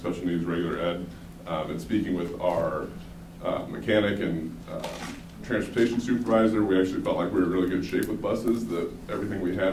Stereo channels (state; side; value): identical; both; correlation 1.00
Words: needs, regular ed, and speaking with our mechanic and transportation supervisor, we actually felt like we were in really good shape with buses, that everything we